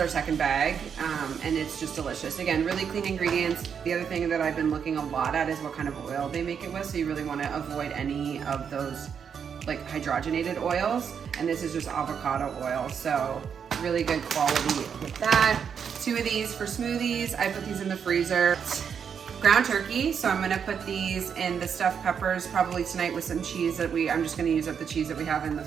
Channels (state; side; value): quieter; left; 7.2 dB